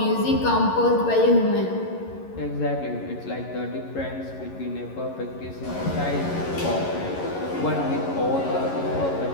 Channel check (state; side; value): late; right; 11 ms